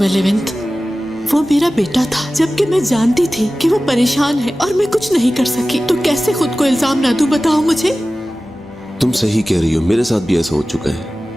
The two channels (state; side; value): normal; both; correlation 0.96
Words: लेवेंट? वो मेरा बेटा था, जबकि मैं जानती थी कि वो परेशान है और मैं कुछ नहीं कर सकी। तो कैसे खुद को इल्जाम ना दूं बताओ मुझे। तुम सही कह रही हो, मेरे साथ भी ऐसा हो चुका है।